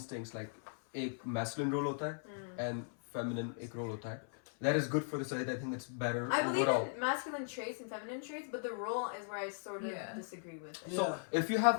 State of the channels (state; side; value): silent; right; 52 dB below the other